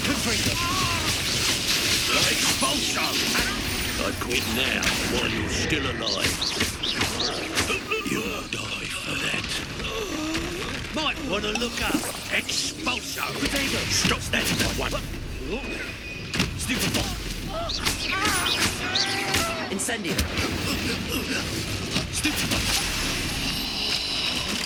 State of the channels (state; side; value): identical; both; correlation 1.00